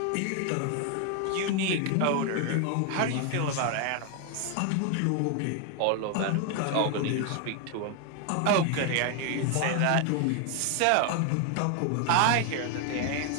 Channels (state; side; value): different; both; correlation 0.01